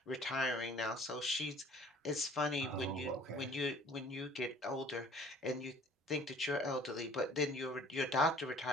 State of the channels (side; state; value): both; normal; correlation 0.52